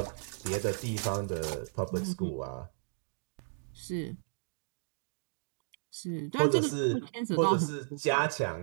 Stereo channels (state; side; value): silent; left; digital silence